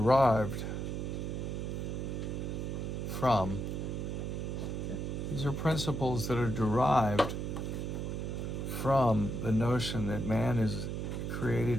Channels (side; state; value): right; noise; hum, 3 dB below the sound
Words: from the notion that man is